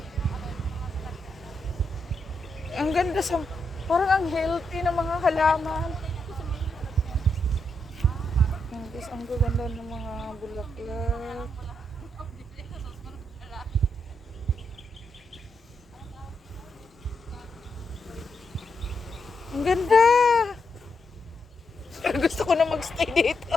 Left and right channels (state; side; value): normal; both; correlation 0.82